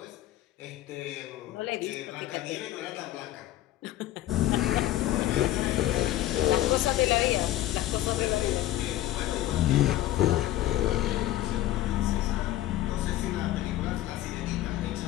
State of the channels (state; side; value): quieter; right; 14.3 dB